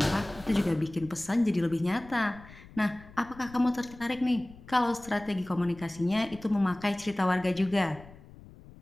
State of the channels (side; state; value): left; noise; rumble, 20 dB below the sound